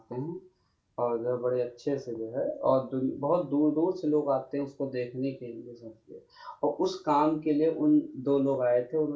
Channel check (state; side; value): identical; both; correlation 1.00